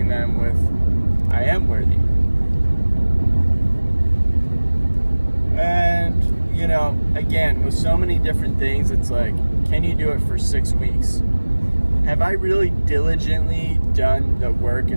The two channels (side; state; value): both; inverted; correlation -1.00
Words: them with, I am worthy. And, you know, again, with so many different things, it's like, can you do it for 6 weeks? Have I really diligently done the work